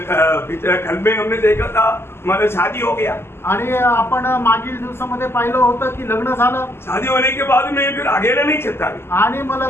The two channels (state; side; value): late; right; 0.12 ms